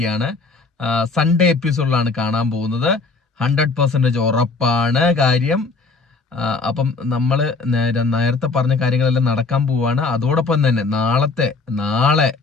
സൺഡേ എപ്പിസോഡിലാണ് കാണാൻ പോകുന്നത്. 100% ഉറപ്പാണ് കാര്യം. അപ്പം നമ്മൾ നേരത്തെ പറഞ്ഞ കാര്യങ്ങളെല്ലാം നടക്കാൻ പോവാണ്. അതോടൊപ്പം തന്നെ നാളെ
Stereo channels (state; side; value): quieter; right; 4.1 dB